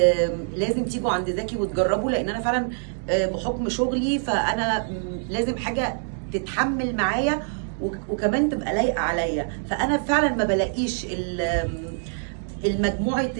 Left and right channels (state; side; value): silent; left; 60 dB below the other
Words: لازم تيجوا عند زكي وتجربوا، لان انا فعلا بحكم شغلي فانا لازم حاجه تتحمل معايا وكمان تبقى لايقه عليا. فانا فعلا ما بلاقيش المجموعه